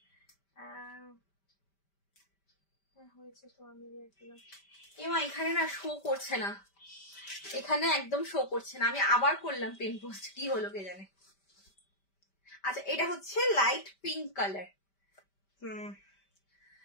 হয়েছে তো আমি এমা এখানে না শো করছে না, এখানে একদম শো করছে না, আমি আবার করলাম পিন পোস্ট, কি হলো কে জানে। আচ্ছা এটা হচ্ছে লাইট পিঙ্ক কালার,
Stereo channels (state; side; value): late; right; 5.1 ms